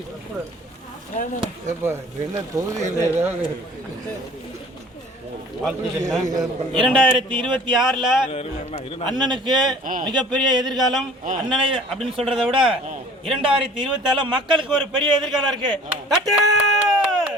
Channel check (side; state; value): both; normal; correlation 0.48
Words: என்ன தொகுதியில் ஏதாவது 2026 அண்ணனுக்கு மிகப்பெரிய எதிர்காலம். அண்ணனை அப்படின்னு சொல்றதை விட 2024 மக்களுக்கு ஒரு பெரிய எதிர்காலம் இருக்கு. தட்டு.